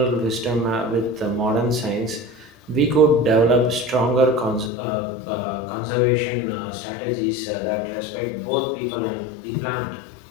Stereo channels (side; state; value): right; drops out; at 4.7 s